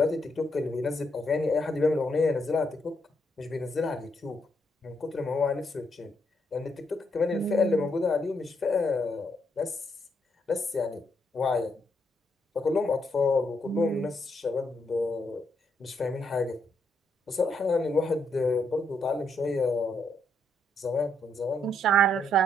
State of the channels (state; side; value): normal; both; correlation 0.76